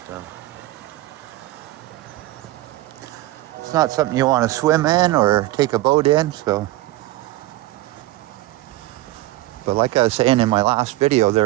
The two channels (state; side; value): quieter; left; 16.8 dB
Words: So it's not something you want to swim in or take a boat in. But like I was saying in my last video,